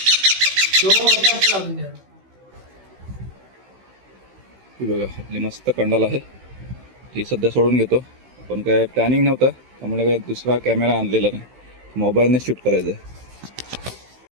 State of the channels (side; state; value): left; late; 16 ms